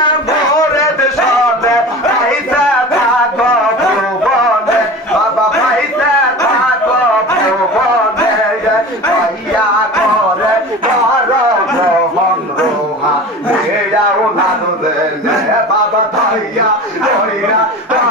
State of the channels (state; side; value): normal; both; correlation 0.34